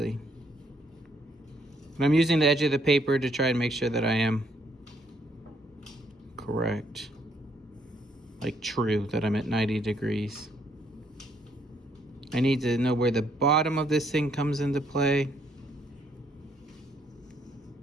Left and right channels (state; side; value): normal; both; correlation 0.70